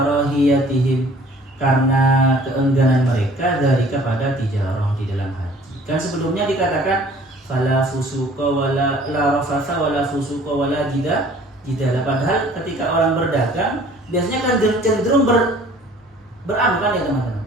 karena keengganan mereka dari kepada tijarah di dalam haji. Kan sebelumnya dikatakan fala fusuqa wala la rafatha wala fusuqa wala jidala. Padahal ketika orang berdagang biasanya kan cenderung beranu kan ya teman-teman.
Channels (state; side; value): normal; both; correlation 0.52